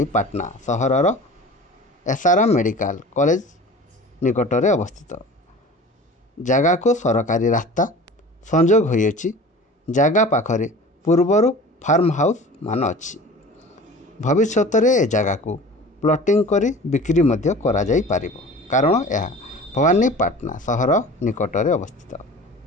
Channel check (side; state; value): both; normal; correlation 0.40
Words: सहरर एसआरएम मेडिकल कॉलेज निकटरे अवस्थित। जगह को सरकारी रास्ता संजोग होइछि। जगह पाखरे पूर्वर फार्म हाउस मान अच्छी। भविष्य में ए जगह को प्लॉटिंग करी बिक्री मध्य करा जाई पारिबो, कारण यह भवानीपाटना सहर निकटरे अवस्थित।